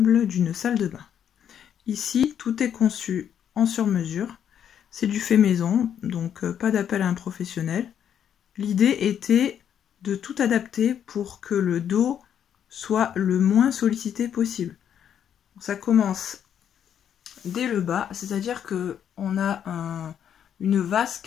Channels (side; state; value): right; quieter; 9.0 dB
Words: d'une salle de bain. Ici, tout est conçu en sur-mesure. C'est du fait maison, donc pas d'appel à un professionnel. L'idée était de tout adapter pour que le dos soit le moins sollicité possible. Ça commence dès le bas, c'est-à-dire qu'on a une